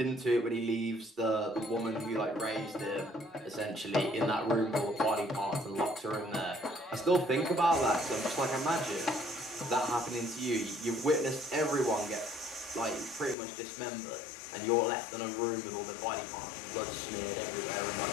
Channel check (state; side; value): drops out; right; at 13.4 s